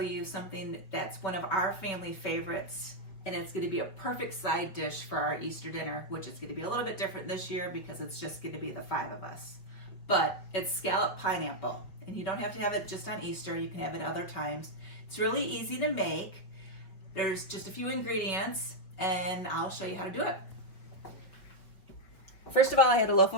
something that's one of our family favorites, and it's going to be a perfect side dish for our Easter dinner, which is going to be a little bit different this year because it's just going to be the 5 of us. But it's scalloped pineapple, and you don't have to have it just on Easter, you can have it other times. It's really easy to make. There's just a few ingredients, and I'll show you how to do it. First of all, I had a loaf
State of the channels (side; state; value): right; late; 5.5 ms